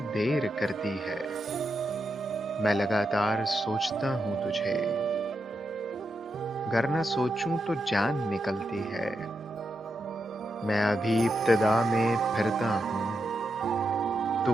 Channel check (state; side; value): normal; both; correlation 0.85